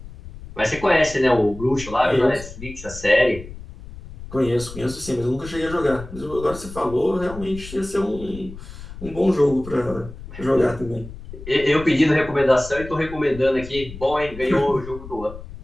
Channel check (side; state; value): left; noise; rumble, 14 dB below the sound